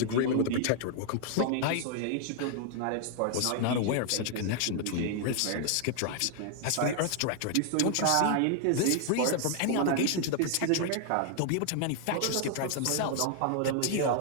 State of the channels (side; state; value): both; different; correlation 0.00